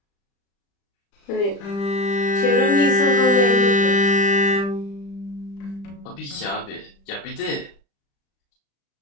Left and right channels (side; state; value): right; late; 35 ms